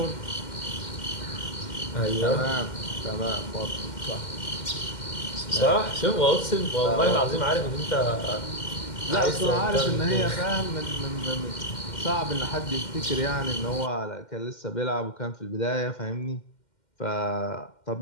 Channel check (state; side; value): late; right; 2.1 ms